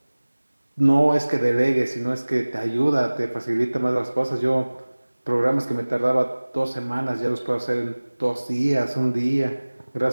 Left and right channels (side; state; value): both; inverted; correlation -1.00